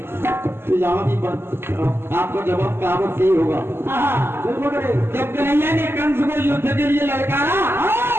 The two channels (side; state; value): left; late; 0.11 ms